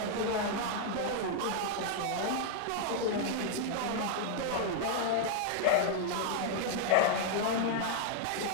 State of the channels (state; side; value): different; both; correlation 0.00